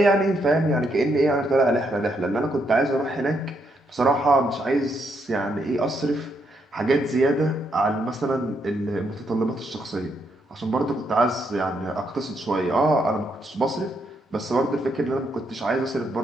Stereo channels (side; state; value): both; normal; correlation 0.77